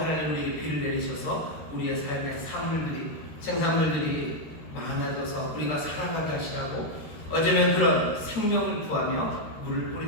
우리에게 비를 내리셔서 우리의 삶의 생산물들이 많아져서 우리가 살아가게 하시라고 어쩌면 그런 생명을 구하며 물을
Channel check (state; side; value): late; right; 13 ms